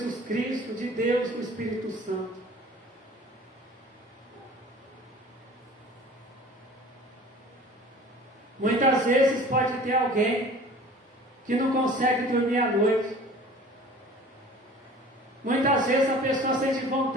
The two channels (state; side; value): normal; both; correlation 0.45